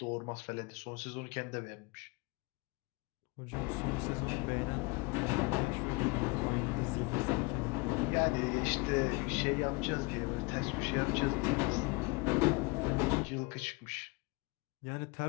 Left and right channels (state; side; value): quieter; right; 28.0 dB